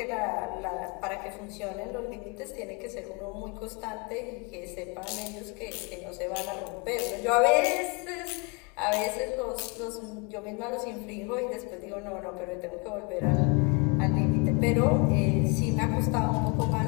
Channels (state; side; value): quieter; right; 31.5 dB